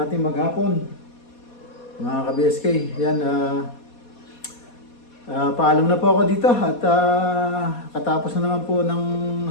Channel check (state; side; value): late; right; 4.2 ms